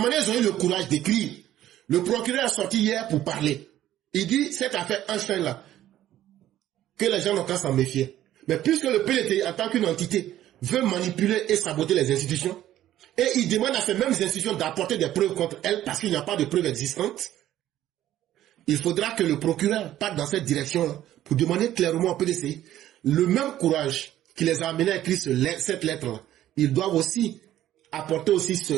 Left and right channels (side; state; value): left; quieter; 12.9 dB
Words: dont ils ont eu le courage d'écrire, le procureur est sorti hier pour parler. Il dit, cette affaire Einstein là, que les gens n'ont qu'à s'en méfier. Mais puisque le PDCI, en tant qu'une entité, veut manipuler et saboter les institutions, et il demande à ces mêmes institutions d'apporter des preuves contre elles parce qu'il n'y a pas de preuves existantes, il faudra que le procureur parte dans cette direction-là pour demander clairement au PDCI le même courage qui les a amenés à écrire cette lettre-là. Ils doivent aussi apporter aussi